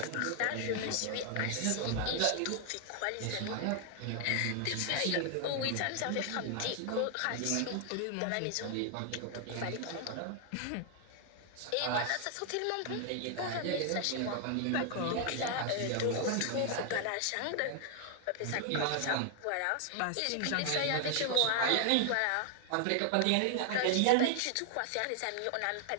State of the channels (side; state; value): both; different; correlation 0.00